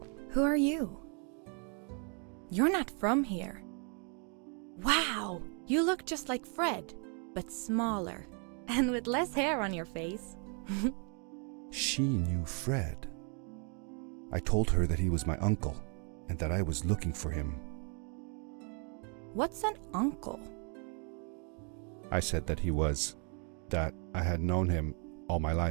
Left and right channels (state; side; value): quieter; left; 38.7 dB